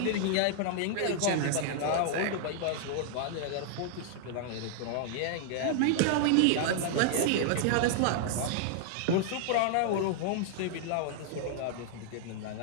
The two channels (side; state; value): both; different; correlation -0.01